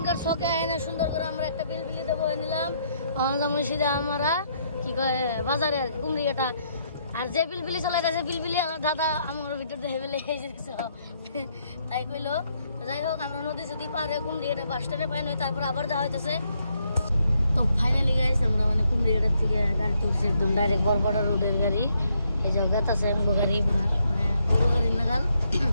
শখে আয়না সুন্দর করে আমরা একটা বিলবিলি দেবো নিলাম। যেমন সিধা আমরা কি কয় বাজারে আর কুমড়িয়াটা। আর যে বিলবিলি চালাইতেছে বিলবিলি দাদা আমার ভিতর দেখে ফেলে তাই কইলো। যাই হোক, আমরা নদী যদি পারে কুমড়িয়াটা বাস স্ট্যান্ডে পাই নই, তারপর আবার যাওয়া হইতেছে। তো ফাইনালি গাইস আমরা মানে কুমড়িয়াটার থেকে গাড়ি তুলছি, একদম ডাইরেক্ট বরপাটা রোডের গাড়ি। এই যে গাতাছে গাড়ি, মানে গরু গাড়ির নাগাল,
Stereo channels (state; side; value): inverted; both; correlation -0.74